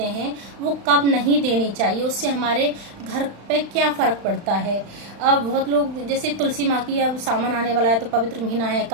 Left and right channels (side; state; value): left; late; 35 ms